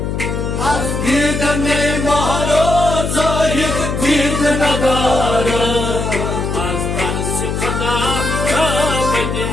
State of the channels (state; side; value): noise; left; hum, 2 dB below the sound